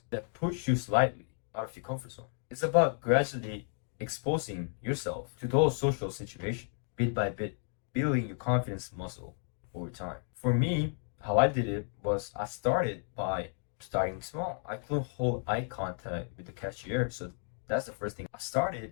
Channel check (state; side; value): silent; right; 56 dB below the other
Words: that push you slightly out of your comfort zone. It's about gradually exposing yourself to those social situations, bit by bit, building your confidence muscle over time. For me, how I did it was I started by starting small. I couldn't hold eye contact with the cashier, so that's the first thing. I